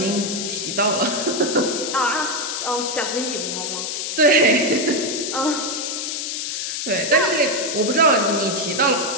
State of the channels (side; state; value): left; noise; hiss, 3 dB below the sound